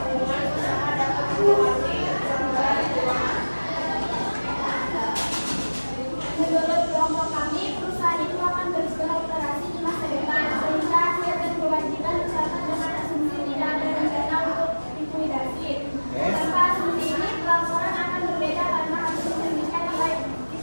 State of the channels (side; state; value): both; inverted; correlation -1.00